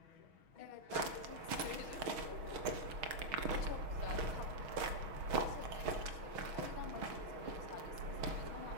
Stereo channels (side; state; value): left; late; 6.3 ms